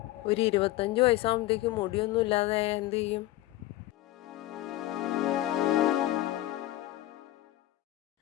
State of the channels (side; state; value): right; quieter; 16.0 dB